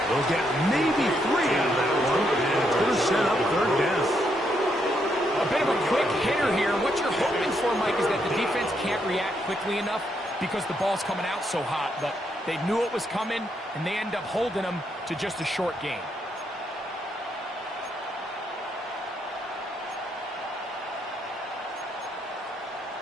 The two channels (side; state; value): both; normal; correlation 0.77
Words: They'll get maybe 3 out of that one, and it's going to set up 3rd down. A bit of a quick hitter here. What you're hoping for, Mike, is that the defense can't react quickly enough because the ball's coming out so hot, but they knew it was coming, and they end up holding them to just a short gain.